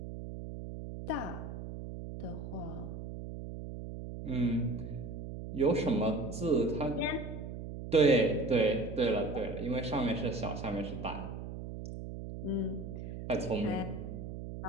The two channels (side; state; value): right; noise; hum, 8 dB below the sound